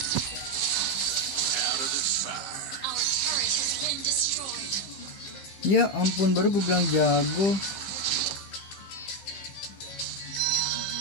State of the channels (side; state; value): right; late; 15 ms